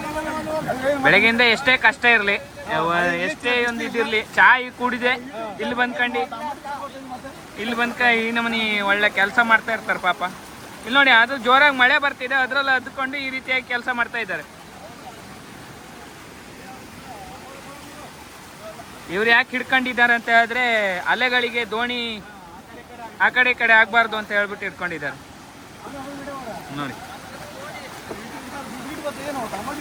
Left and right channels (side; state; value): both; identical; correlation 1.00